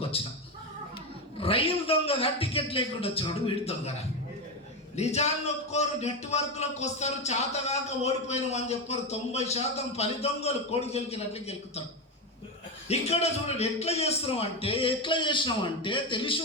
వచ్చిన. రైలు దొంగగా టికెట్ లేకుండా వచ్చినాడు వీడి దొంగరా. నిజాన్ని ఒప్పుకోరు. నెట్వర్క్లోకి వస్తారు, చేతగాక ఓడిపోయినాం అని చెప్పారు. 90% పని దొంగలు కోడి గెలికినట్లు గెలుకుతారు. ఇక్కడ చూడండి ఎట్లా చేసినామంటే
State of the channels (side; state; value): both; normal; correlation 0.13